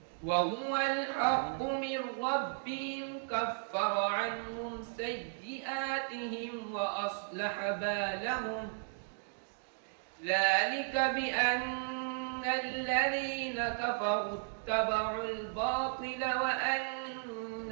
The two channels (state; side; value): silent; left; digital silence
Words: من ربهم كفر عنهم سيئاتهم وأصلح بالهم ذلك بأن الذين كفروا اتبعوا الباطل وأن